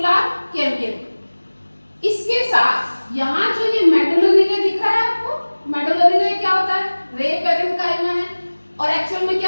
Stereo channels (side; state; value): both; inverted; correlation -1.00